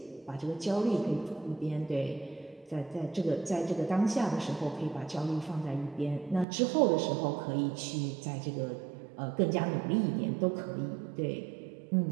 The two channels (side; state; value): left; drops out; at 6.5 s